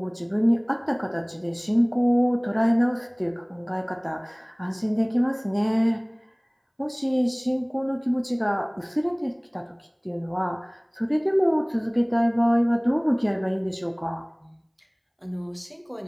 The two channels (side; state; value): both; identical; correlation 1.00